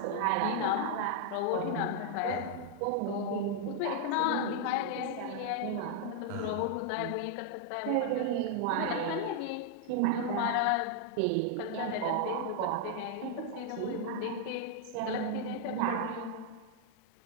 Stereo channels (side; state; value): both; different; correlation 0.00